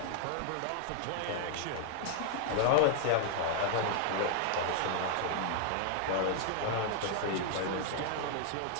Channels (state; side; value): different; both; correlation 0.00